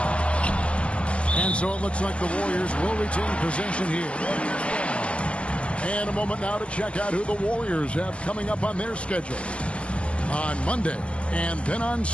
And so it looks like the Warriors will retain possession here. And a moment now to check out who the Warriors have coming up on their schedule. On Monday and then on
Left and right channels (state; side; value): late; right; 0.060 ms